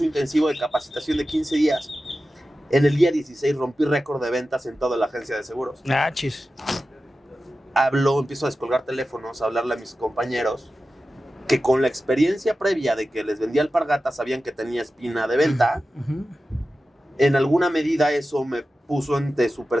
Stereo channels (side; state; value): both; normal; correlation 0.94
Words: intensivo de capacitación de 15 días. En el día 16 rompí récord de ventas en toda la agencia de seguros. Ah, chis. Empiezo a descolgar teléfonos, a hablarle a mis compañeros. que con la experiencia previa de que les vendía alpargatas sabían que tenía espina de venta. En alguna medida eso me puso ante su